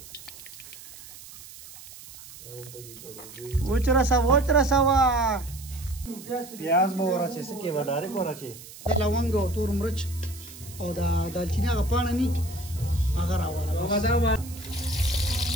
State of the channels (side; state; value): right; noise; hiss, 17 dB below the sound